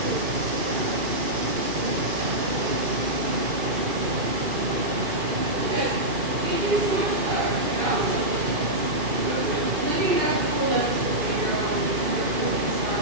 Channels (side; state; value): left; late; 2.5 ms